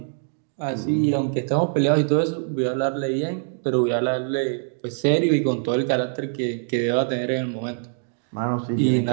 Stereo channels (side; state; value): left; silent; 63 dB below the other